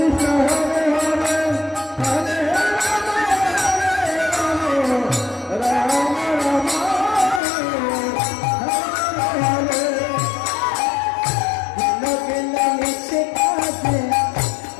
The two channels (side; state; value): right; drops out; at 7.4 s